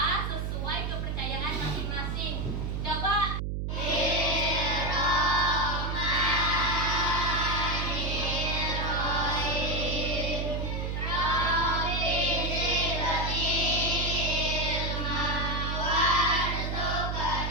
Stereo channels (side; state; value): right; noise; hum, 2 dB below the sound